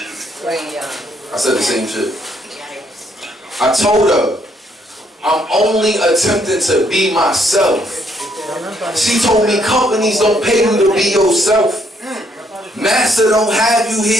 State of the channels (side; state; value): both; normal; correlation 0.71